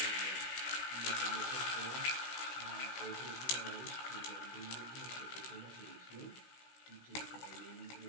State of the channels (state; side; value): late; right; 16 ms